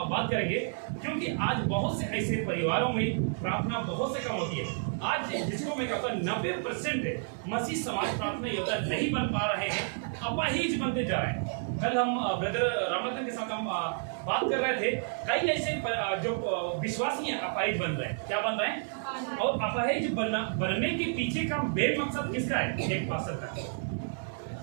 बात करेंगे, क्योंकि आज बहुत से ऐसे परिवारों में प्रार्थना बहुत से कम होती है। आज जिसको मैं कहता हूँ 90% मसीह समाज प्रार्थना योद्धा नहीं बन पा रहे हैं, अपाहिज बनते जा रहे हैं। कल हम ब्रदर रामरतन के साथ हम बात कर रहे थे, कई ऐसे जो विश्वासी हैं अपाहिज बन रहे हैं। क्या बन रहे हैं? और अपाहिज बनने के पीछे का मेन मकसद किसका है? एक पास्टर का।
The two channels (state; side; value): silent; left; 57 dB below the other